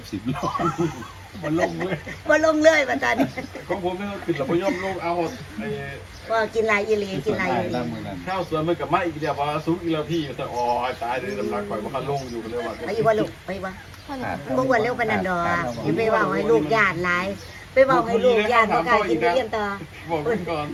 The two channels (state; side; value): identical; both; correlation 1.00